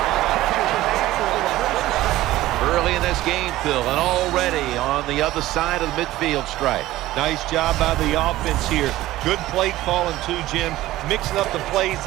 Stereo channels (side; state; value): left; quieter; 16.1 dB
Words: Early in this game, Phil, and already on the other side of the midfield stripe. Nice job by the offense here. Good play calling too, Jim. Mixing up the plays.